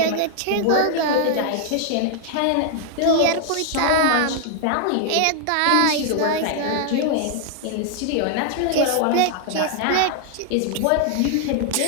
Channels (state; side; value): different; both; correlation 0.00